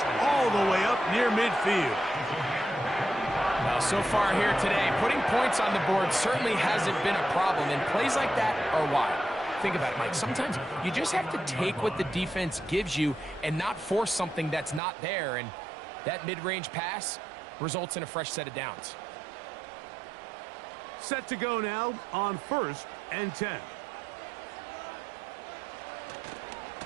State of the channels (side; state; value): left; drops out; at 14.8 s